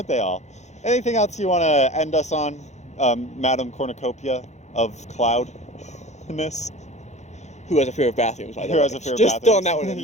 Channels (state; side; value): late; right; 0.33 ms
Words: they all? Anything else you want to end us on, Madam Cornucopia of Cloudness? Who has a fear of bathrooms, by the way? Who has a fear of Just bathrooms? throwing that one in